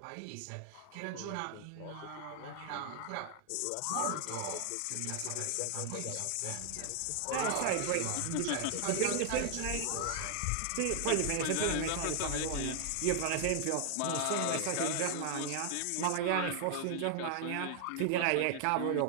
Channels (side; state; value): both; different; correlation 0.00